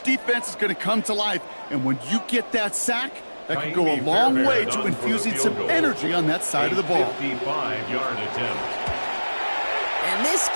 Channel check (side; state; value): both; inverted; correlation -1.00